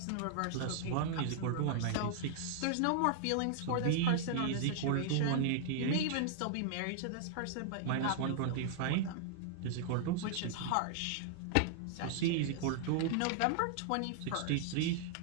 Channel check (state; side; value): different; both; correlation -0.01